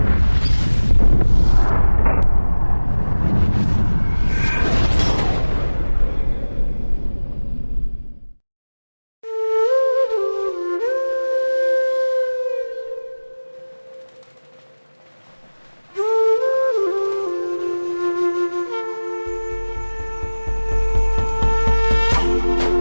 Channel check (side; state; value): both; inverted; correlation -1.00